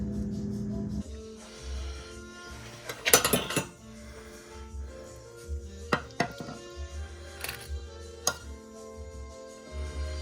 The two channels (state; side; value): identical; both; correlation 1.00